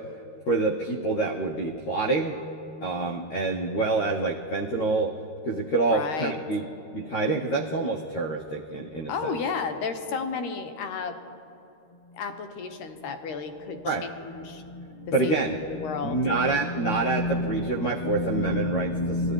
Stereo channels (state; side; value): late; right; 13 ms